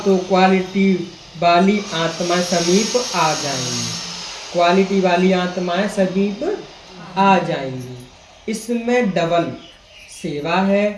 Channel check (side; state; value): both; identical; correlation 1.00